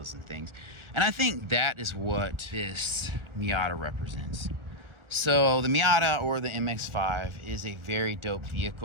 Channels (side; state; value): left; late; 1.4 ms